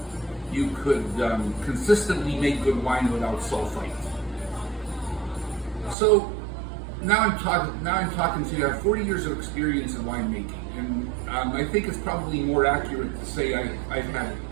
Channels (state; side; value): drops out; left; at 6.0 s